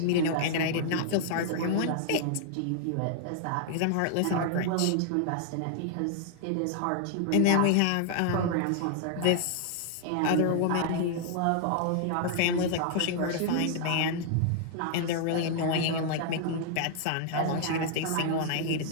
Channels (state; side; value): different; both; correlation -0.01